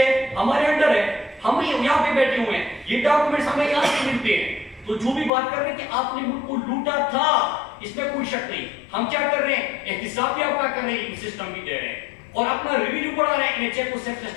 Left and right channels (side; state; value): right; drops out; at 5.3 s